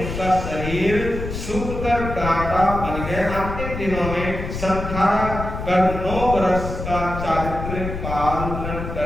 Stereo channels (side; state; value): left; noise; rumble, 6 dB below the sound